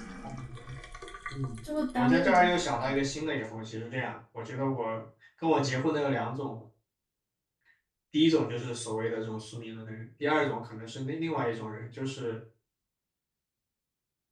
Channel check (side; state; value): both; identical; correlation 1.00